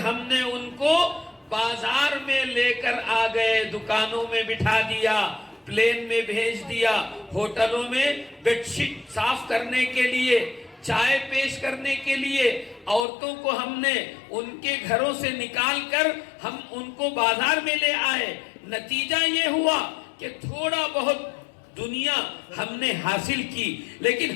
ہم نے ان کو بازار میں لے کر آ گئے، دکانوں میں بٹھا دیا، پلین میں بھیج دیا، ہوٹلوں میں بیڈ شیٹ صاف کرنے کے لیے، چائے پیش کرنے کے لیے عورتوں کو ہم نے ان کے گھروں سے نکال کر ہم ان کو بازار میں لے آئے۔ نتیجہ یہ ہوا کہ تھوڑا بہت دنیا ہم نے حاصل کی، لیکن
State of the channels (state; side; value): drops out; right; at 13.1 s